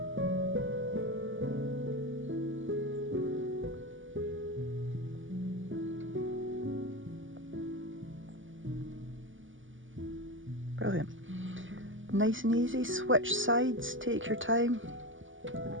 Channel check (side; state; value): left; late; 0.57 ms